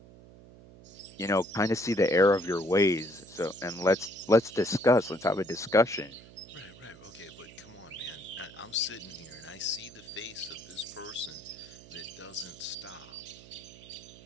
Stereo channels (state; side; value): noise; right; hum, 20 dB below the sound